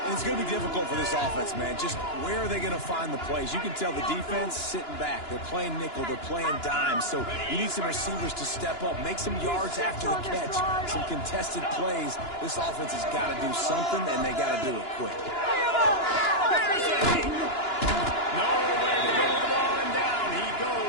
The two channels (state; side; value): late; right; 2.9 ms